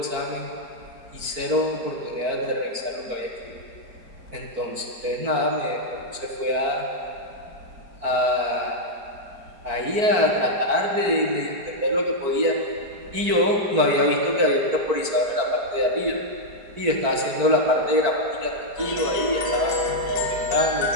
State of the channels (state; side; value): late; left; 4.5 ms